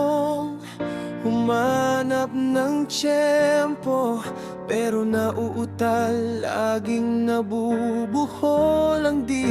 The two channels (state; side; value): identical; both; correlation 1.00